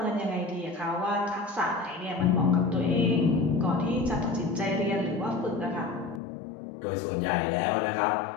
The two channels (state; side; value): drops out; right; at 6.2 s